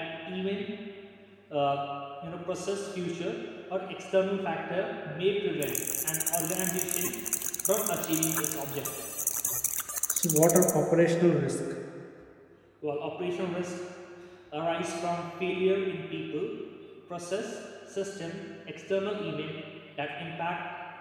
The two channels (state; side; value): identical; both; correlation 1.00